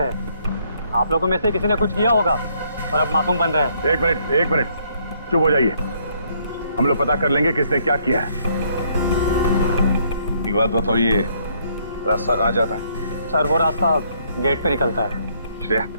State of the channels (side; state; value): both; inverted; correlation -0.68